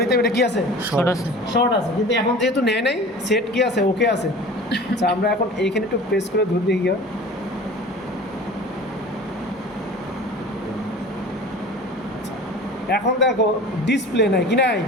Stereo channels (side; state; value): both; normal; correlation 0.40